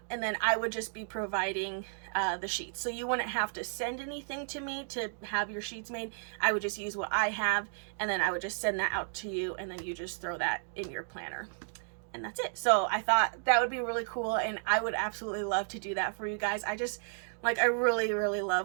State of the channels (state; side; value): silent; left; digital silence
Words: then I would just be providing the sheets. So you wouldn't have to send anything to me to have your sheets made. I would just use what I have, and then I would just send that out to you, and then you just throw that in your planner. And that's it. So I thought that would be really cool, and I would absolutely love to do that for you guys. I really, really